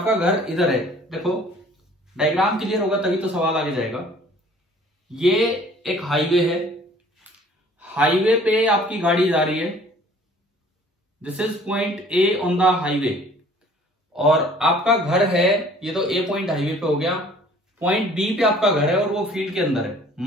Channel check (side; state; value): both; normal; correlation 0.53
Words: घर इधर है। देखो डायग्राम क्लियर होगा तभी तो सवाल आगे जाएगा। ये एक हाईवे है, हाईवे पे आपकी गाड़ी जा रही है। This is point A on the highway, और आपका घर है, ये तो ए पॉइंट हाईवे पे हो गया। पॉइंट बी पे आपका घर है और वो फील्ड के अंदर है।